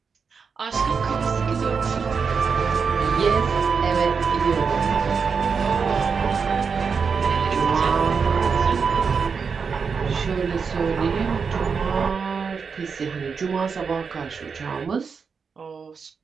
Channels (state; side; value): quieter; left; 5.7 dB